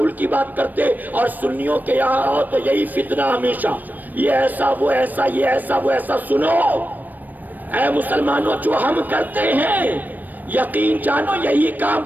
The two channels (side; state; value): left; late; 0.087 ms